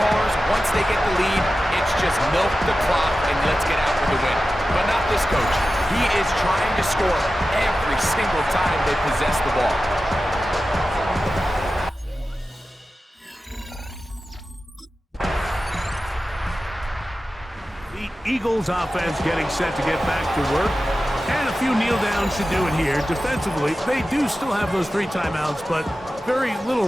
once they get the lead, it's just milk the clock and let's get out with the win. But not this coach. He is trying to score every single time they possess the ball. The Eagles offense getting set to get back to work. And a few kneel downs should do it here. Defensively, they do still have those 3 timeouts, but very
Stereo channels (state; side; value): normal; both; correlation 0.94